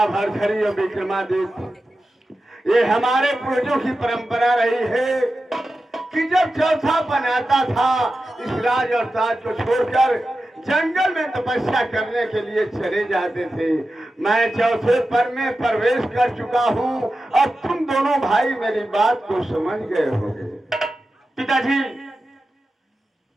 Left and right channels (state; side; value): normal; both; correlation 0.92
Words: भरथरी और विक्रमादित्य, ये हमारे पूर्वजों की परंपरा रही है कि जब चौथा बनाता था इस राज और ताज को छोड़कर जंगल में तपस्या करने के लिए चले जाते थे। मैं चौथे पर में प्रवेश कर चुका हूँ। अब तुम दोनों भाई मेरी बात को समझ गए होंगे। पिताजी,